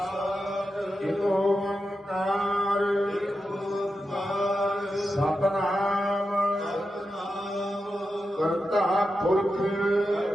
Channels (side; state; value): both; normal; correlation 0.89